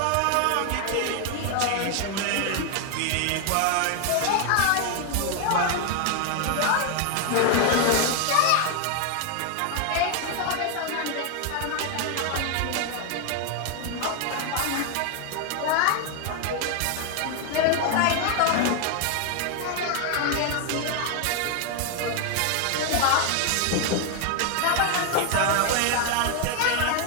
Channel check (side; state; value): both; different; correlation 0.00